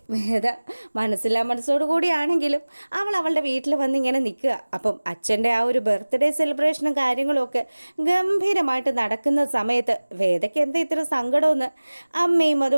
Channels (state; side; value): inverted; both; correlation -1.00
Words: മനസ്സില്ലാ മനസ്സോടു കൂടിയാണെങ്കിലും അവളുടെ വീട്ടിൽ വന്ന് ഇങ്ങനെ നിൽക്കുക. അപ്പം അച്ഛൻ്റെ ആ ഒരു ബർത്ത്ഡേ സെലിബ്രേഷനും കാര്യങ്ങളും ഒക്കെ ഗംഭീരമായിട്ട് നടക്കുന്ന സമയത്ത് വേദയ്ക്ക് എന്താ ഇത്ര സങ്കടമെന്ന് അമ്മയും